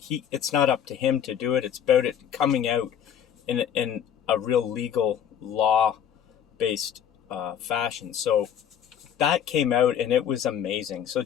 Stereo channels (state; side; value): quieter; right; 9.1 dB